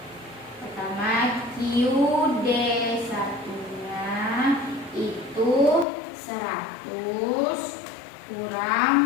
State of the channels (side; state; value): right; drops out; at 5.9 s